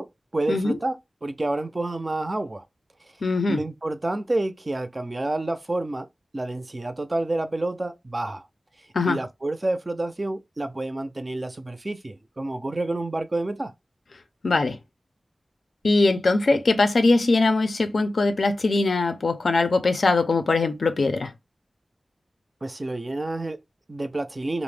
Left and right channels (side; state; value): both; normal; correlation 0.94